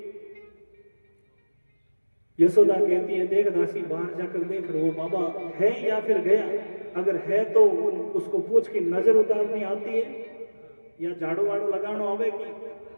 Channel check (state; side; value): inverted; both; correlation -1.00